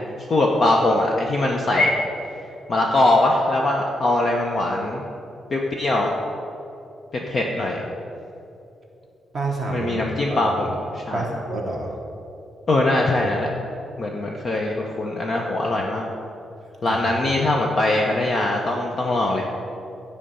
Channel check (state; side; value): normal; both; correlation 0.81